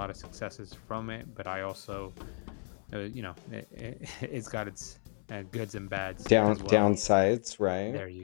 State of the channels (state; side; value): silent; right; 56 dB below the other